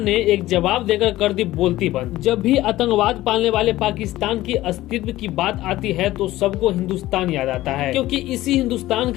ने एक जवाब देकर कर दी बोलती बंद। जब भी आतंकवाद पालने वाले पाकिस्तान की अस्तित्व की बात आती है तो सबको हिंदुस्तान याद आता है, क्योंकि इसी हिंदुस्तान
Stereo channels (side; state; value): right; quieter; 16.1 dB